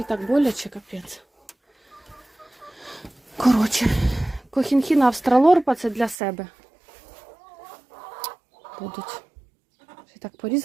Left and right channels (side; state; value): left; drops out; at 6.2 s